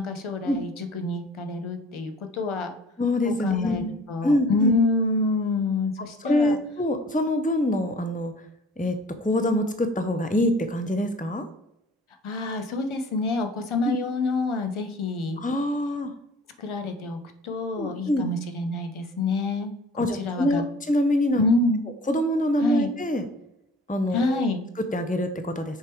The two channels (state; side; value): normal; both; correlation 0.49